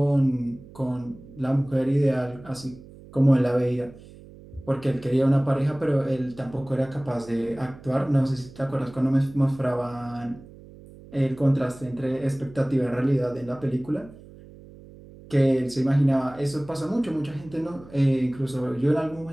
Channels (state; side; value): noise; right; hum, 20 dB below the sound